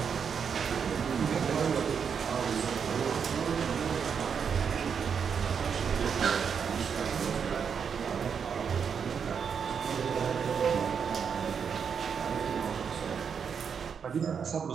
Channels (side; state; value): left; quieter; 6.8 dB